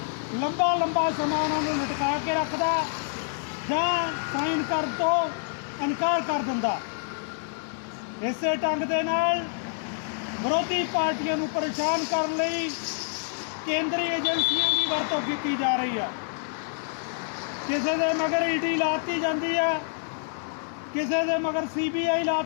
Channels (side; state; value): right; silent; digital silence